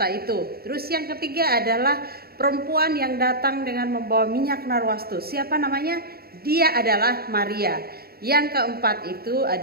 itu. Terus yang ketiga adalah perempuan yang datang dengan membawa minyak narwastu. Siapa namanya? Dia adalah Maria. Yang keempat itu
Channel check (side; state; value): left; late; 0.45 ms